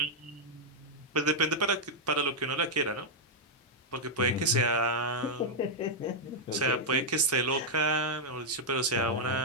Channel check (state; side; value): normal; both; correlation -0.04